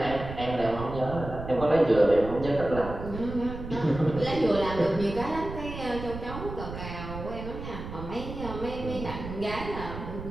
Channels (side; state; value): right; noise; rumble, 9 dB below the sound